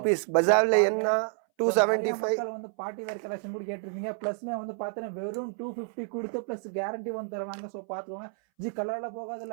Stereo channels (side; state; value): left; silent; 58 dB below the other